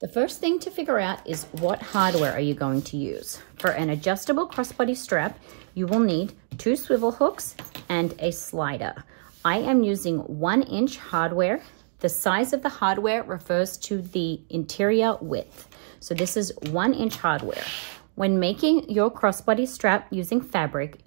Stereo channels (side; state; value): left; silent; digital silence